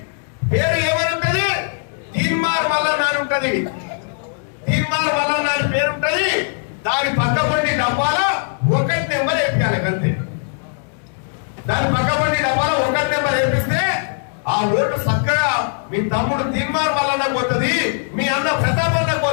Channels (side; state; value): right; silent; 66 dB below the other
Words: పేరు ఏమనుంటది? తీర్మార్ మల్లన్న అని ఉంటది. తీర్మార్ మల్లన్న అని పేరు ఉంటది. దాని పక్కపండి డబ్బాలో 1 నెంబర్ వేపించాలి అంతే. దాని పక్కపండి డబ్బాలో 1 నెంబర్ వేపిస్తే ఆ ఓటు చక్కగా మీ తమ్ముడు తీర్మార్ మల్లన్న పోతుంది, మీ అన్న ప్రతాప్ అన్న